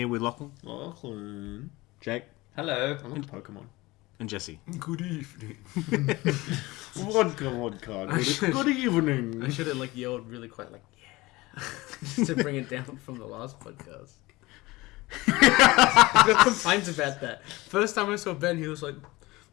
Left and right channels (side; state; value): right; quieter; 20.9 dB